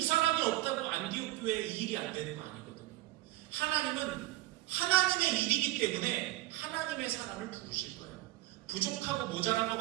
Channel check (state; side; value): quieter; left; 17.3 dB